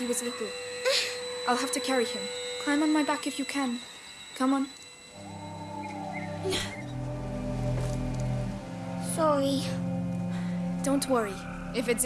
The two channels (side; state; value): both; identical; correlation 1.00